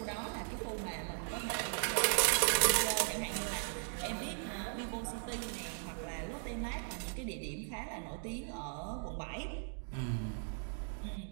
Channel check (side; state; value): left; silent; 52 dB below the other